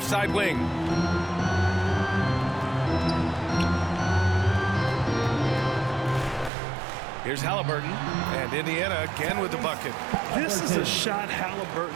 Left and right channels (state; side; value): drops out; left; at 6.5 s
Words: side wing. Here's Halliburton, and Indiana again with the bucket. This is a shot